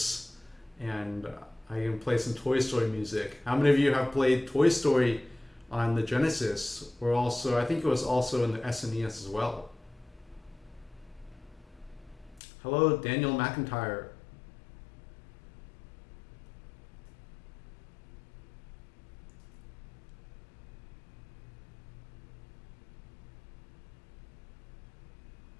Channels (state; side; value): drops out; right; at 12.4 s